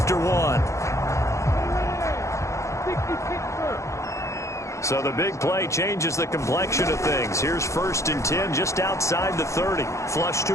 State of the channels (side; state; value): right; late; 0.14 ms